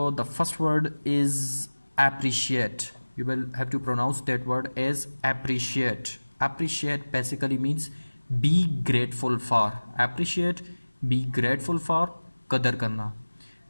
the first word is appreciate. You will have to pronounce that word as appreciate. Appreciate basically means be grateful for. Appreciate, be grateful for, qadar karna.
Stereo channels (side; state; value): both; inverted; correlation -1.00